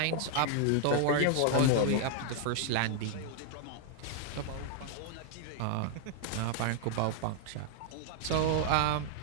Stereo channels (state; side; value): different; both; correlation -0.01